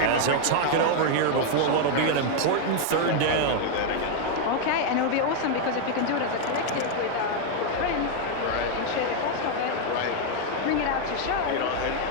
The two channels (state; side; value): different; both; correlation 0.00